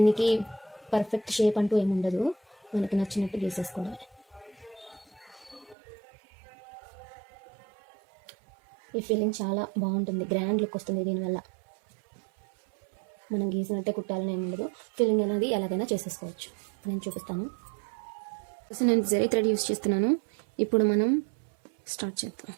పర్ఫెక్ట్ షేప్ అంటూ ఏముండదు, మనకి నచ్చినట్టు గీసేసుకోవాలి. ఈ ఫీలింగ్ చాలా బాగుంటుంది, గ్రాండ్ లుక్ వస్తుంది దీనివల్ల. మనం గీసినట్టే కుట్టాలని ఏముండదు, ఫీలింగ్ అనేది ఎలాగైనా చేసేసుకోవచ్చు. నేను చూపిస్తాను. నేను జరీ థ్రెడ్ యూస్ చేస్తున్నాను. ఇప్పుడు మనం స్టార్ట్ చేద్దాం.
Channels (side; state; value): left; drops out; at 5.8 s